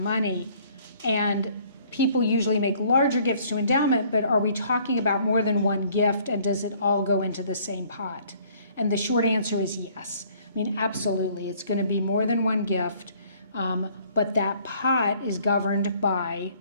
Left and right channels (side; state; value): both; inverted; correlation -0.59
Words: and people usually make larger gifts to endowment, but are we talking about more than one gift, and does it all go into the same pot? And the short answer is yes. I mean, absolutely, it's going to be more than one gift, but that pot is governed by